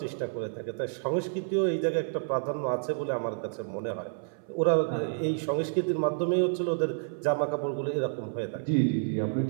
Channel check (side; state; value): left; silent; 57 dB below the other